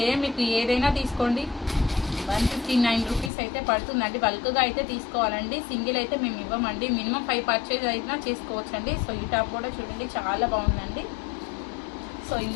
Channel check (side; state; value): right; drops out; at 3.3 s